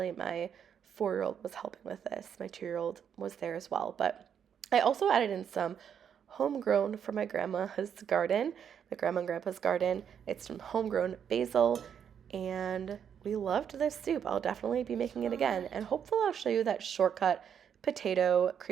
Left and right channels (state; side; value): quieter; left; 8.2 dB